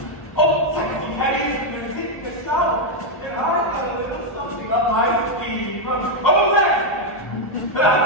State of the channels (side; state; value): right; late; 1.3 ms